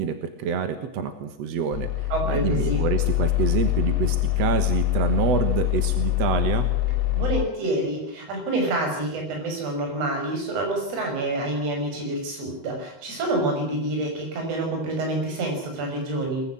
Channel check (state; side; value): late; left; 8.0 ms